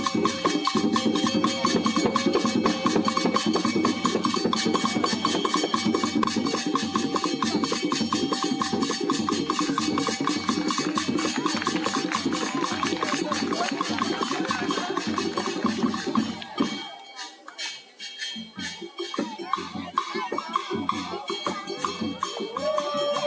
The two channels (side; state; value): both; identical; correlation 1.00